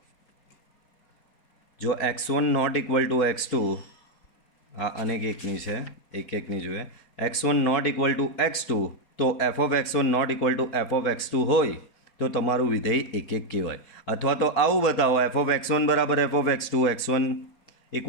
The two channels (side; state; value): right; late; 4.6 ms